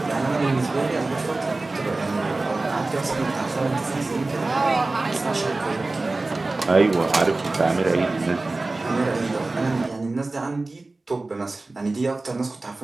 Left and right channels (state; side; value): quieter; left; 3.2 dB